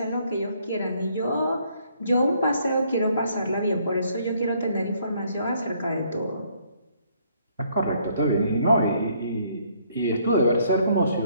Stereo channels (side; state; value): both; inverted; correlation -0.67